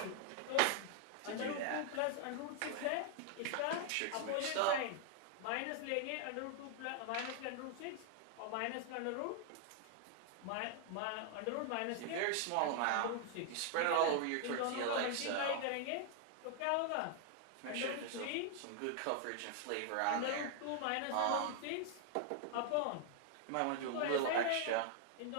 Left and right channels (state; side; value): different; both; correlation 0.00